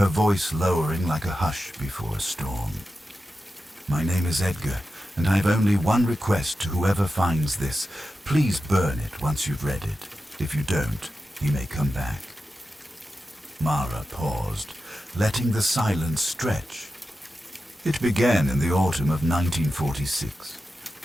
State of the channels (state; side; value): normal; both; correlation 0.91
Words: voice lowering like a hush before a storm. "My name is Edgar, and I have only one request to whoever finds this. Please burn it once you've read it. If you don't, he may come back." Mara paused, letting the silence stretch. It began in the autumn of 1946.